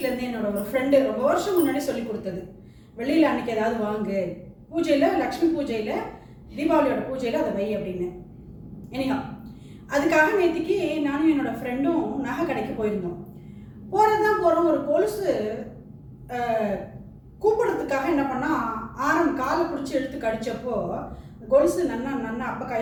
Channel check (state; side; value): identical; both; correlation 1.00